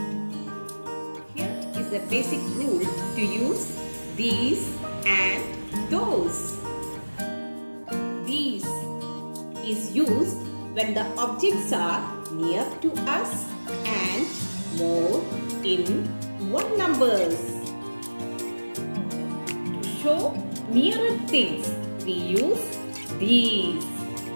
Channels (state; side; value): inverted; both; correlation -1.00